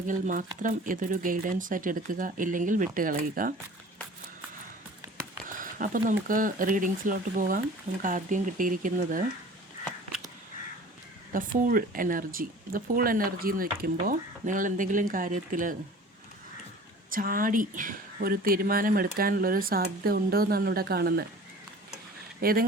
മാത്രം ഇതൊരു ഗൈഡൻസ് ആയിട്ട് എടുക്കുക, ഇല്ലെങ്കിൽ വിട്ടുകളയുക. അപ്പോൾ നമുക്ക് റീഡിങ്സിലോട്ട് പോകാം. നമുക്ക് ആദ്യം കിട്ടിയിരിക്കുന്നത് the fool energy. The fool energy എന്ന് വയ്ക്കുമ്പോൾ നിങ്ങൾ എന്തെങ്കിലും കാര്യത്തിൽ ചാടി ഒരു തീരുമാനമെടുക്കാനുള്ളൊരു സാധ്യത ഉണ്ടോ എന്നാണ് ഇവിടെ കാണുന്നത്.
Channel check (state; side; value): normal; both; correlation 0.44